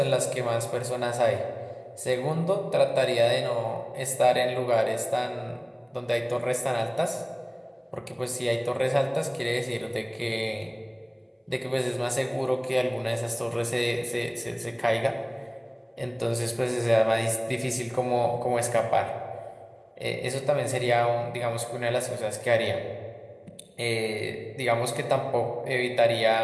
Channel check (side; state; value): both; identical; correlation 1.00